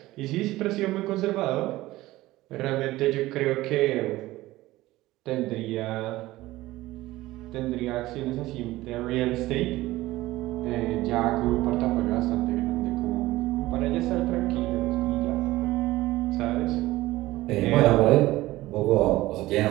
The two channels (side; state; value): left; quieter; 17.6 dB